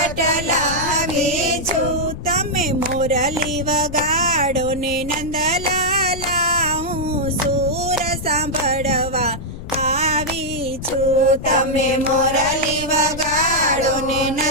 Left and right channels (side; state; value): left; noise; rumble, 10 dB below the sound